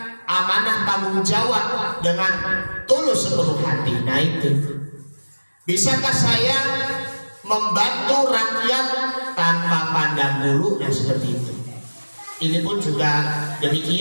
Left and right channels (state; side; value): inverted; both; correlation -1.00